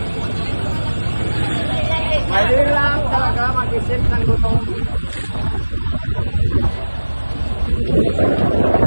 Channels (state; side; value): inverted; both; correlation -1.00